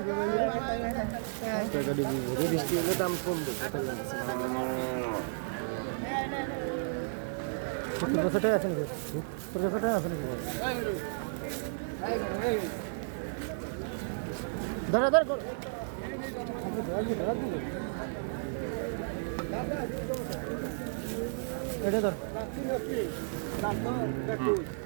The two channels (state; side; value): silent; left; digital silence